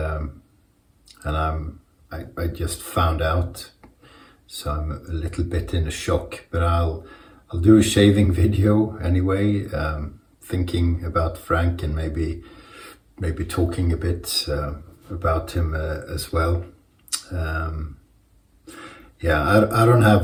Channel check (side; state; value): both; identical; correlation 1.00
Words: I just found out, so I'm a little bit in a shock. But I'll do a shaving video anyway, thinking about Frank and maybe talking a bit about him as well. Yeah, I don't